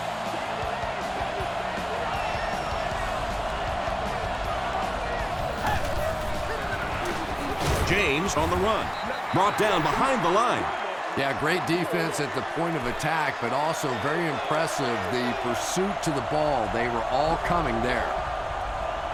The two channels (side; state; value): both; identical; correlation 1.00